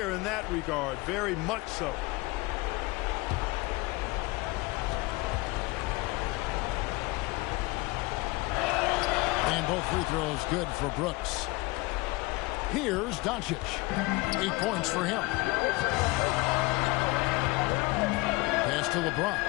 in that regard, very much so. And both free throws good for Brooks. Here's Doncic. 8 points for him. Pass to LeBron.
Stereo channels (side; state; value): right; quieter; 22.9 dB